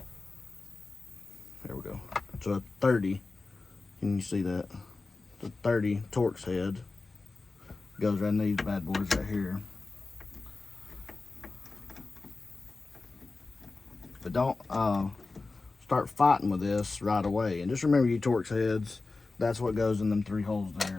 There we go. So a 30, can you see that? The 30 Torx head goes right in these bad boys right here. But don't start fighting with this right away. And just remember, your Torx heads, that's what goes in them 3 holes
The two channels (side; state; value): right; quieter; 3.6 dB